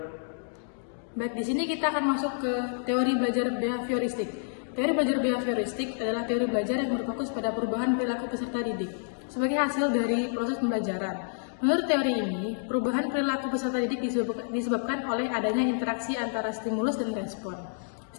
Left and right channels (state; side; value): silent; right; digital silence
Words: Baik, di sini kita akan masuk ke teori belajar behavioristik. Teori belajar behavioristik adalah teori belajar yang berfokus pada perubahan perilaku peserta didik sebagai hasil dari proses pembelajaran. Menurut teori ini, perubahan perilaku peserta didik disebabkan oleh adanya interaksi antara stimulus dan respon.